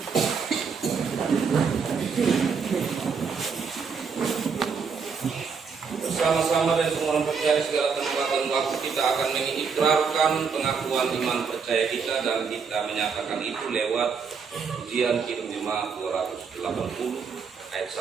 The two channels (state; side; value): quieter; left; 5.8 dB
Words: bersama-sama dan semua orang percaya segala tempat dan waktu kita akan mengikrarkan pengakuan iman percaya kita dan kita menyatakan itu lewat ujian hidup jemaat 280 ayat